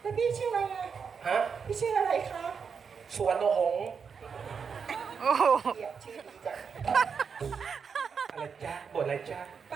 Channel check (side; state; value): left; quieter; 6.1 dB